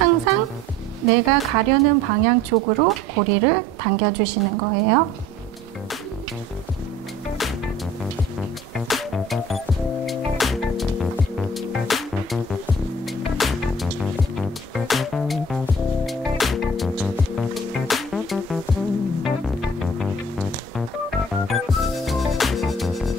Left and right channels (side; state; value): both; normal; correlation 0.49